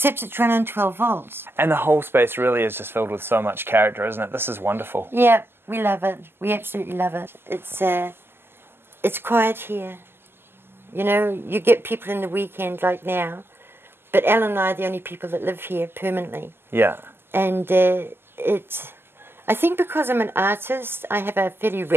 it's run on 12 volts. And the whole space really is just filled with so much character, isn't it? This is wonderful. Yeah, we love it. We absolutely love it. It's quiet here. You know, you get people in the weekend like now, but Al and I are the only people that live here permanently. Yeah. And I think because I'm an artist, I have a very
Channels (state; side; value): late; left; 0.11 ms